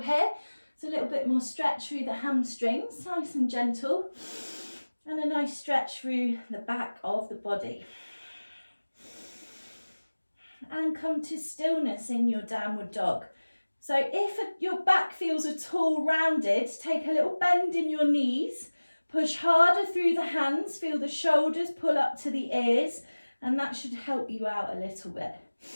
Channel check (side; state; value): both; inverted; correlation -1.00